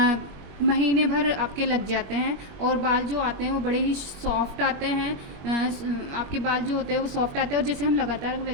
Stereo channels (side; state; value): left; late; 21 ms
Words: महीने भर आपके लग जाते हैं, और बाल जो आते हैं वो बड़े ही सॉफ्ट आते हैं। आपके बाल जो होते हैं वो सॉफ्ट आते हैं, और जैसे हम लगातार